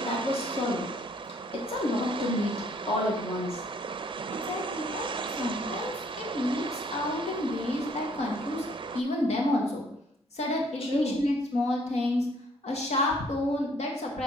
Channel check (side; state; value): both; normal; correlation 0.62